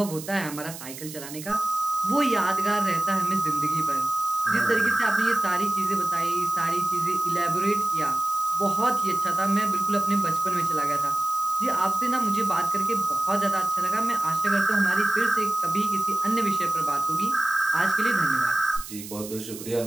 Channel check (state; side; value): noise; right; hiss, 12 dB below the sound